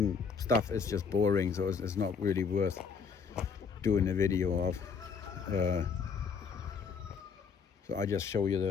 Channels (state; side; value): quieter; right; 5.9 dB